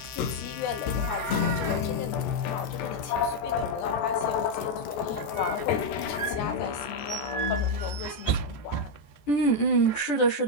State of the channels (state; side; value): late; right; 14 ms